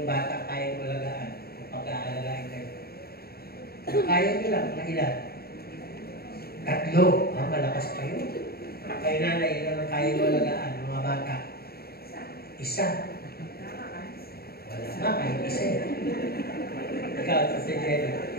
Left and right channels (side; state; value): right; late; 0.45 ms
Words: bata kaya mo alagaan o pagka-alagain kayo? Kaya nyo lang, mga ilan? 3. Malakas pa yun. Kayo nanay, ilan ang kaya mo alagaan, mga bata? 1. Wala nga, kahit 1. Ikaw, si Jenny,